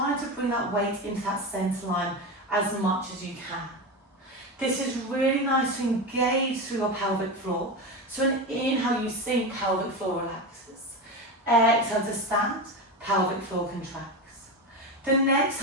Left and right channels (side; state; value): both; normal; correlation 0.20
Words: to bring that weight into that centre line as much as you can. This is really nice to engage through your pelvic floor. So an inhale, you sink, pelvic floor relaxes. Exhale to stand, pelvic floor contracts. The next